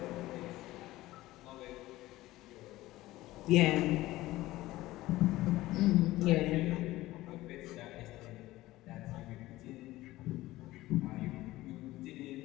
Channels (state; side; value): quieter; right; 17.3 dB